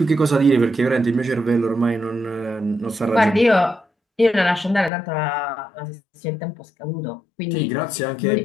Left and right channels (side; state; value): right; drops out; at 4.9 s